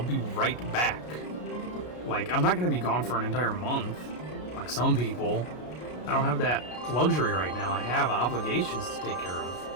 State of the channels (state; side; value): late; right; 33 ms